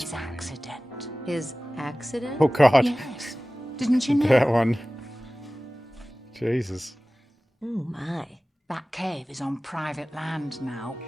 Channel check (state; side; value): normal; both; correlation 0.97